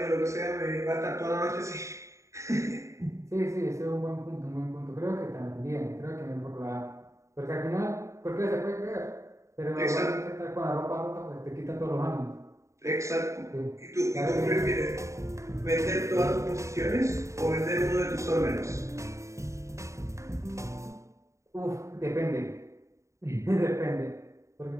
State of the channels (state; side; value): late; left; 0.14 ms